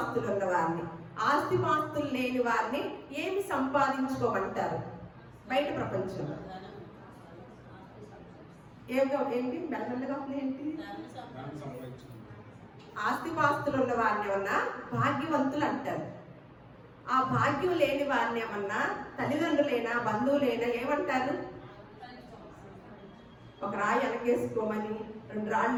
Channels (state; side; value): identical; both; correlation 1.00